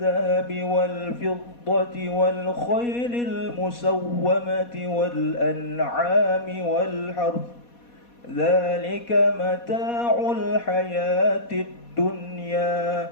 والفضة والخيل المسومة والأنعام والحرث ذلك متاع الحياة الدنيا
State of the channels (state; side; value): late; right; 4.2 ms